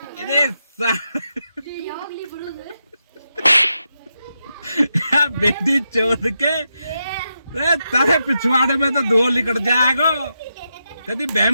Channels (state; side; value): inverted; both; correlation -0.86